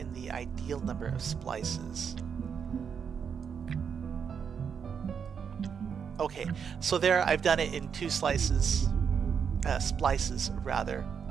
the ideal number of splices. Okay, so there I've done it in 2 splices rather,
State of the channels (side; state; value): left; quieter; 6.9 dB